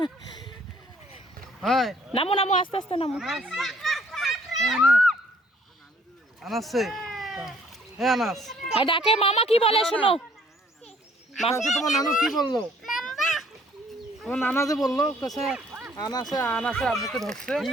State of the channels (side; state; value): both; normal; correlation 0.61